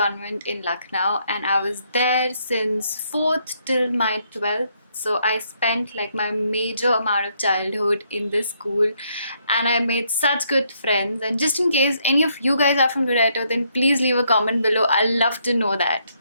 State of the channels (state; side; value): inverted; both; correlation -0.73